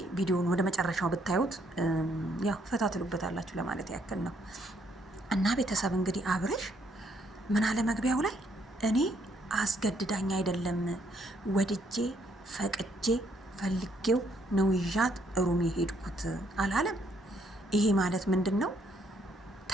ቪዲዮን ወደ መጨረሻው ብታዩት ያው ፈታ ትሉበታላችሁ ለማለት ያክል ነው። እና ቤተሰብ እንግዲህ አብሬሽ ምን አለ መግቢያው ላይ እኔ አስገድዳኝ አይደለም ወድጄ ፈቅጄ ፈልጌው ነው ይዣት ሩም የሄድኩት አላለም። ይሄ ማለት ምንድን ነው?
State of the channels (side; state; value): both; normal; correlation 0.70